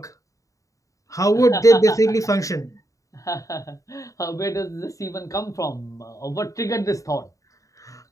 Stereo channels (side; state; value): right; late; 0.16 ms